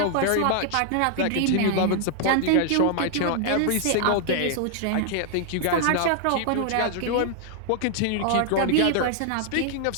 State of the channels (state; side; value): different; both; correlation 0.00